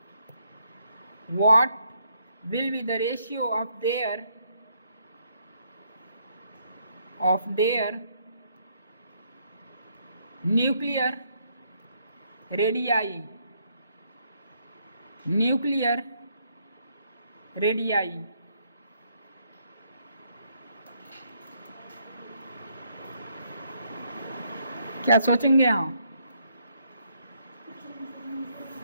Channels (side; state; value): both; inverted; correlation -0.72